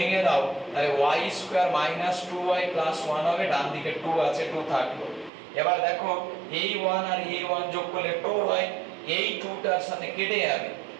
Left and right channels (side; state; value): left; drops out; at 5.3 s